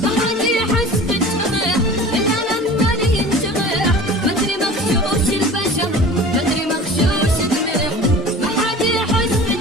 ما حد يحس بالجرح إلا لما لي ينجرح، مدري مغشوش البشر مدري مغشوش الملح. ما حد يحس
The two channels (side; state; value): both; normal; correlation 0.41